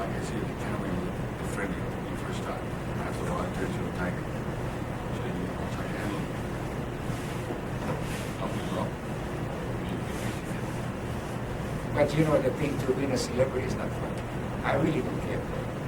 I said, the camera was friendly when you first started. After a while, it turns you a tiger. So you try to handle it. Something's wrong. But the thing to being a celebrity is not fun. I really don't care.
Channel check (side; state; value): both; identical; correlation 1.00